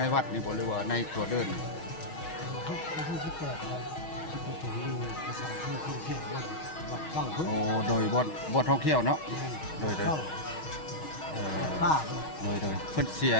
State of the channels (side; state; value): right; late; 6.4 ms